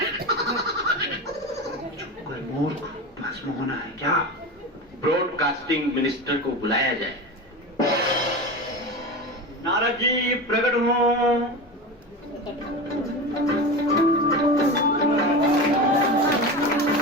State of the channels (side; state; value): both; normal; correlation 0.26